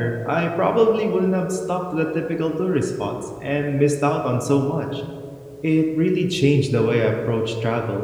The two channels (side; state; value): both; identical; correlation 1.00